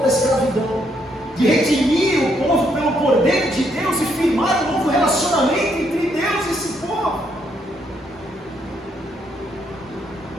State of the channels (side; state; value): both; normal; correlation 0.74